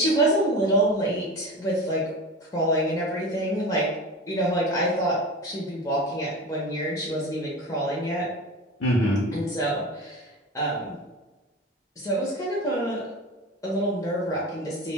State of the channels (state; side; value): normal; both; correlation 0.30